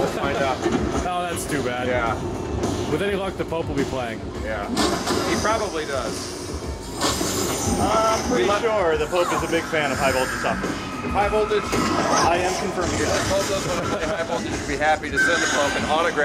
find out. Oh, that's too bad. Yeah. With any luck, the Pope will be playing. Yeah. He probably does. I'm pretty sure the Pope is a big fan of high voltage software. High voltage? I am confirming I that. told those when I play high voltage would be happy to send the Pope an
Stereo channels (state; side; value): identical; both; correlation 1.00